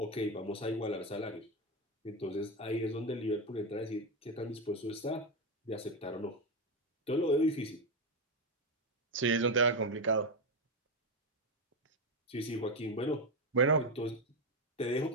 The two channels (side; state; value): both; normal; correlation 0.10